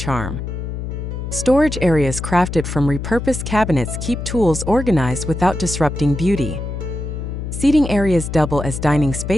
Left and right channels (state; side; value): noise; left; hum, 6 dB below the sound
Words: Storage areas crafted from repurposed cabinets keep tools organized without disrupting beauty. Seating areas double as dining